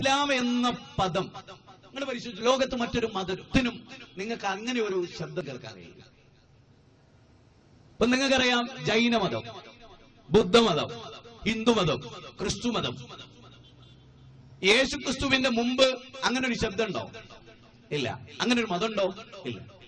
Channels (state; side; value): identical; both; correlation 1.00